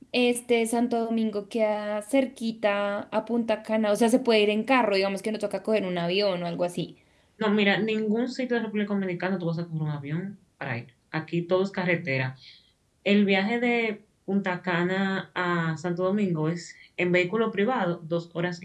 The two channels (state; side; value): identical; both; correlation 1.00